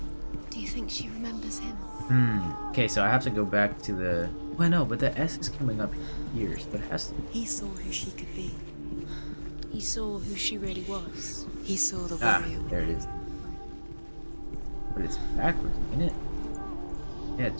Do you think she remembers him? Okay, so I have to go back to the... Well, no, but the S is coming up here, so it has to... He saw who she could be. He saw who she really was. He saw the Ah, warrior. there it is. But it's backwards, isn't it? Yeah,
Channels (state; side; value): inverted; both; correlation -1.00